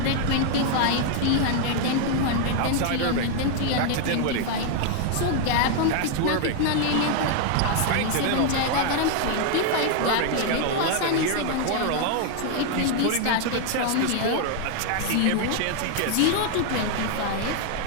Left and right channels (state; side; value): different; both; correlation 0.00